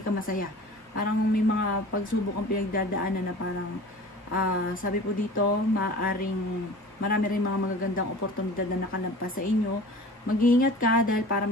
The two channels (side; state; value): both; normal; correlation 0.41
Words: ka masaya. Parang may mga pagsubok ang pinagdadaanan na parang sabi po dito marami rin mga magagandang oportunidad na nakalampas sa inyo. Mag-iingat ka dahil para